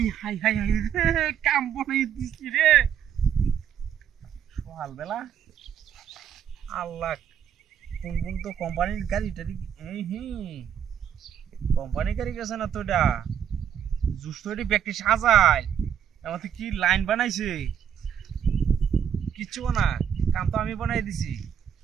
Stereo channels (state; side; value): quieter; left; 8.8 dB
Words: काम बनाई दिसी रे সকাল বেলা আল্লাহ কোন তো কোম্পানির গাড়ি টারি কোম্পানি গাড়ি গেছে না তোটা জুস্তরি ব্যক্তি সাজায় আমাদের কি লাইন বানাইছে কিচ্ছু না কাম তো আমি বানাই দিছি